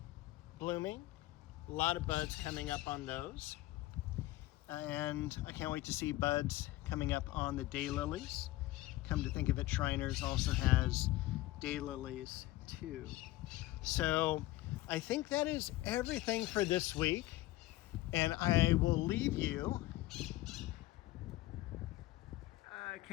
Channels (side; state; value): right; quieter; 17.0 dB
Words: blooming. A lot of buds coming up on those. And I can't wait to see buds coming up on the daylilies. Come to think of it, Shriners also has daylilies too. So I think that is everything for this week. And I will leave you, I